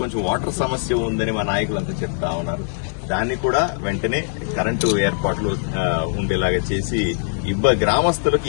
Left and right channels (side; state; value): right; silent; digital silence